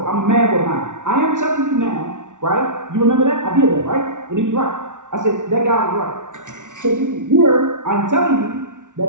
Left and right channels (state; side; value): late; left; 0.87 ms